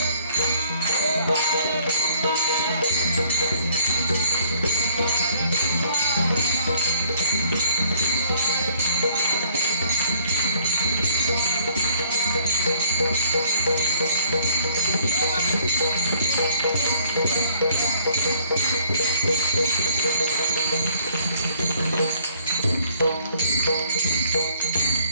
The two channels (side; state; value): both; inverted; correlation -0.61